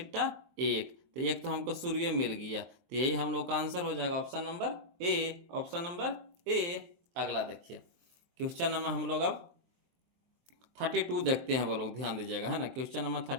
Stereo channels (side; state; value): left; late; 23 ms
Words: 1, तो एक तो हमको सूर्य मिल गया, तो यही हम लोग का आंसर हो जाएगा option number A, option number ए। अगला देखिए क्वेश्चन नंबर हम लोग अब 32 देखते हैं, वो लोग ध्यान दीजिएगा, है ना। क्वेश्चन नंबर